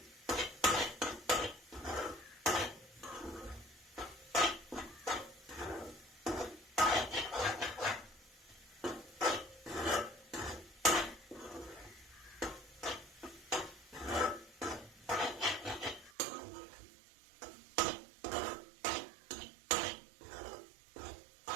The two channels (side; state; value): left; drops out; at 16.1 s